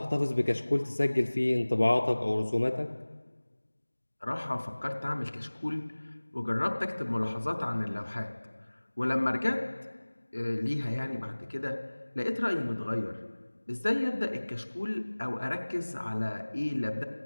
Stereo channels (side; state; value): both; inverted; correlation -1.00